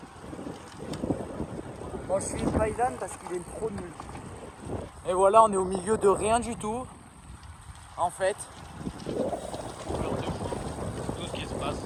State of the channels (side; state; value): both; identical; correlation 1.00